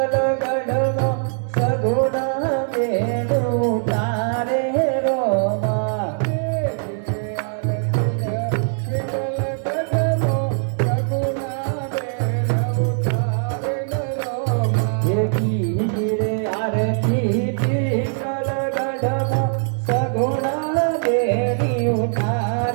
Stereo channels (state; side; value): silent; left; digital silence